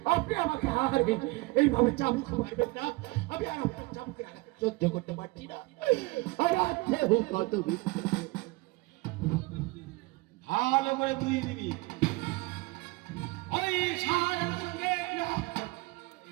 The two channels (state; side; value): quieter; left; 23.5 dB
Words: আপনি আমাকে হারবেন, এইভাবে চাবুক মারবেন না। আমি আর আপনার চাবুকের আঘাত সহ্য করতে পারছি না। কত ভালো করে তুই দিবি ওই শাহজাদির সঙ্গে